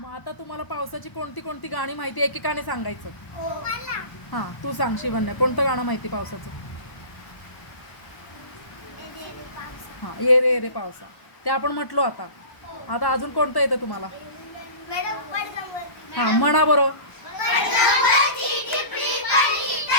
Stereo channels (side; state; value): right; late; 1.0 ms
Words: आता तुम्हाला पावसाची कोणती कोणती गाणी माहिती एकेकाने सांगायचं? हा, तू सांग शिवन्या, कोणतं गाणं माहिती पावसाचं? हा, ये रे ये रे पावसा, ते आपण म्हटलो. आता आता अजून कोणतं येतं तुम्हाला? हा, म्हणा बरोबर.